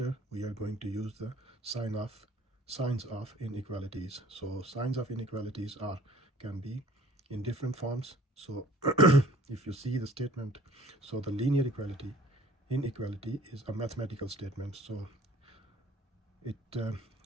we are going to use the signs of inequalities. So signs of inequalities can be in different forms. So if you see the statement, so the linear inequality is a mathematical statement. So it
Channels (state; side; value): normal; both; correlation 0.51